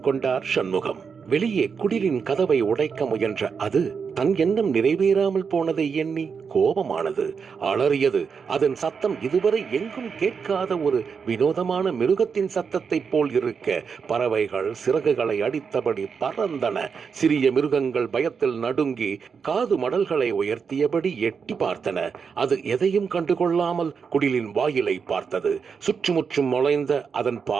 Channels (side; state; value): left; quieter; 6.0 dB